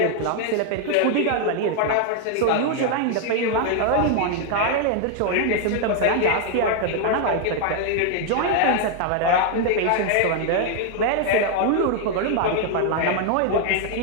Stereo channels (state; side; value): different; both; correlation 0.00